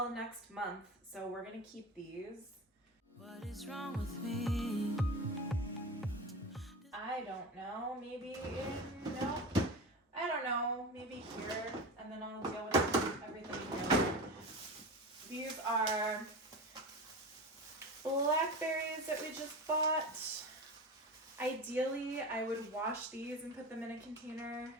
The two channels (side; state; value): both; normal; correlation 0.27